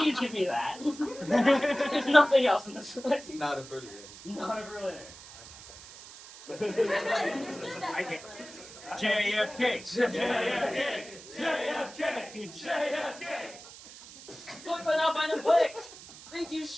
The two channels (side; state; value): right; noise; hiss, 17 dB below the sound